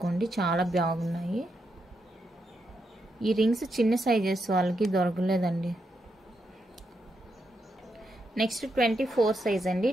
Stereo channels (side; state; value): both; normal; correlation 0.82